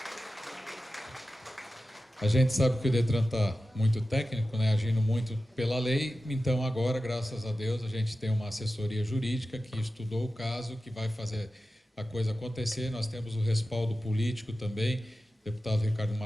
A gente sabe que o Detran está muito técnico, né, agindo muito pela lei, então agora, graças a Deus, a gente tem uma assessoria jurídica que estudou o caso, que vai fazer a coisa acontecer. Nós temos o respaldo político também, deputado Ricardo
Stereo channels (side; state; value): both; normal; correlation 0.94